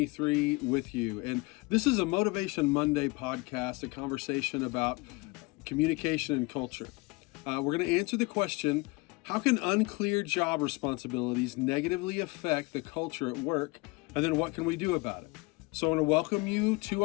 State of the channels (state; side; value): quieter; right; 25.2 dB